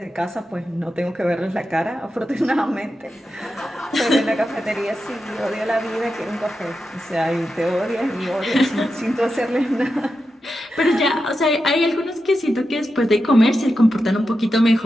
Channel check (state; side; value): normal; both; correlation 0.89